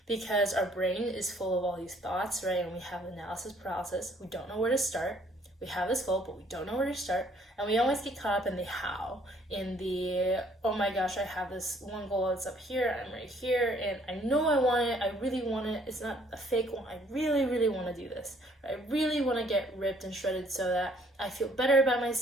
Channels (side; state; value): both; normal; correlation 0.61